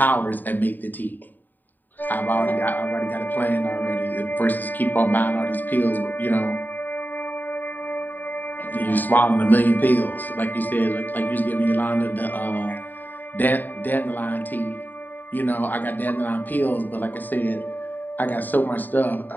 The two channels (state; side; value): late; right; 0.089 ms